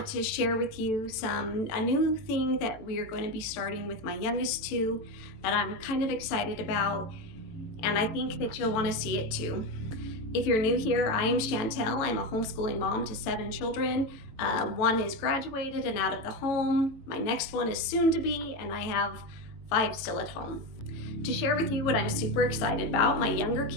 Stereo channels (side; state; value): right; late; 18 ms